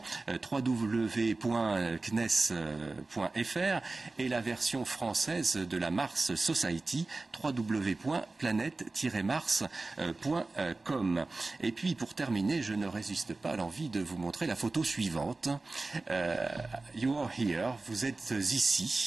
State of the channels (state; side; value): quieter; left; 3.4 dB